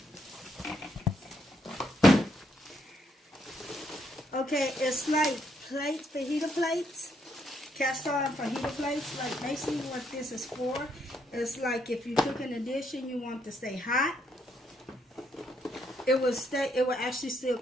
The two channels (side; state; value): both; normal; correlation 0.74